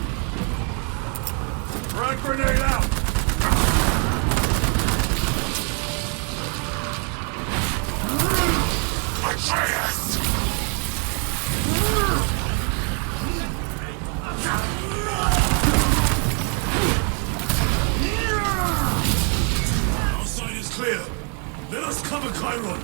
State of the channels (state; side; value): quieter; left; 39.4 dB